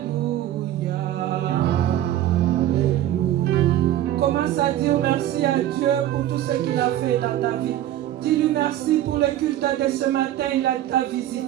Commence à dire merci à Dieu pour tout ce qu'il a fait dans ta vie. Dis-lui merci pour le culte de ce matin, il t'a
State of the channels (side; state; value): left; quieter; 12.8 dB